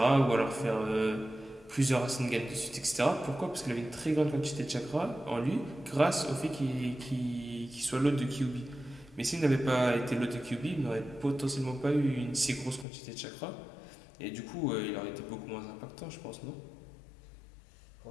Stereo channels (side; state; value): right; drops out; at 12.9 s